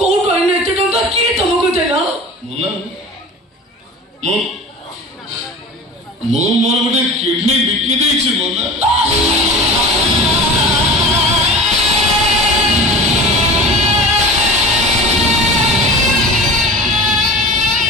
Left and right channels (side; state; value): both; normal; correlation 0.35